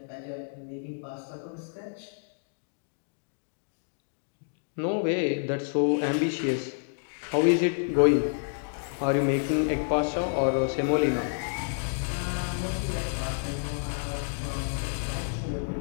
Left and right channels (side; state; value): right; silent; digital silence